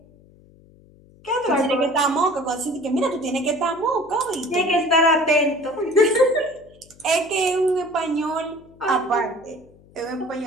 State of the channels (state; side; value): noise; left; hum, 26 dB below the sound